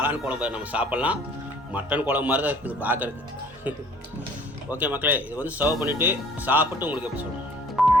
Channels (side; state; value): both; normal; correlation 0.54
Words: குழம்பு நம்ம சாப்பிட்லாம். மட்டன் குழம்பு மாதிரி தான் இருக்குது பார்க்குறதுக்கு. ஓகே மக்களே, இது வந்து சர்வ் பண்ணிவிட்டு சாப்பிட்டு உங்களுக்கு எப்படி சொல்லுங்கள்.